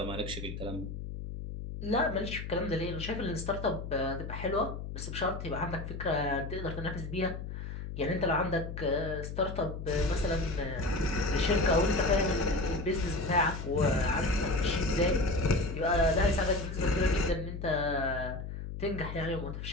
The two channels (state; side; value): noise; left; hum, 7 dB below the sound